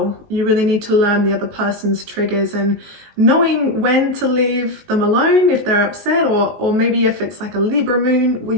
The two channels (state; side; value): late; left; 19 ms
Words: You really need to learn the other person's triggers and knowing when to leave them alone if they're upset, or maybe if it's like a Libra moon where